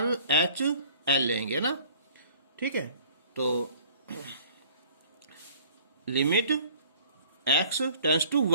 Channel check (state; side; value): inverted; both; correlation -0.52